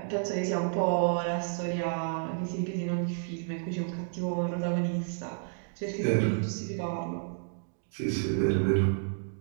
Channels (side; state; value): left; silent; digital silence